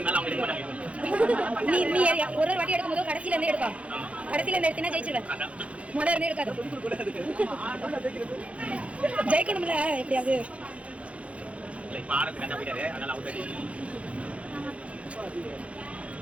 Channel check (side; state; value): left; late; 0.063 ms